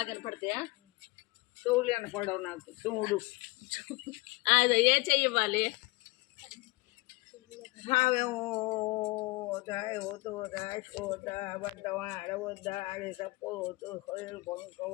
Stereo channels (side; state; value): right; quieter; 22.8 dB